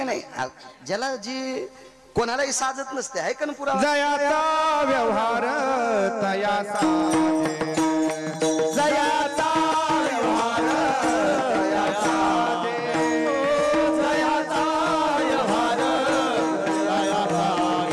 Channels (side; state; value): both; identical; correlation 1.00